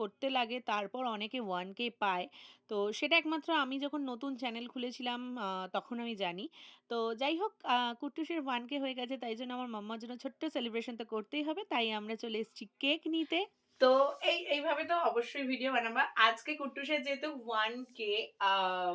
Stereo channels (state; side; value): identical; both; correlation 1.00